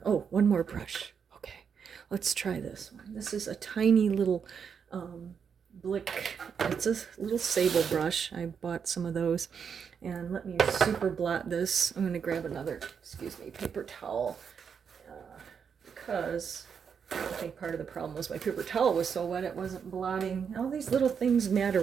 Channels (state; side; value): quieter; left; 6.8 dB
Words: Oh, one more brush. Okay, let's try this one. This is a tiny little Blick. It's a little sable brush. I bought some of those. And let me super blot this. I'm going to grab another, excuse me, paper towel. Because I think part of the problem was my paper towel was so wet it wasn't blotting. All these little things matter